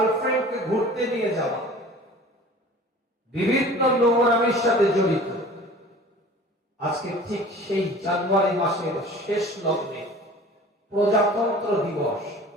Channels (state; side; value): normal; both; correlation 0.43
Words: ঘুরতে নিয়ে যাওয়া, বিভিন্ন নোংরামির সাথে জড়িত। আজকে ঠিক সেই জানুয়ারি মাসের শেষ লগ্নে প্রজাতন্ত্র দিবস,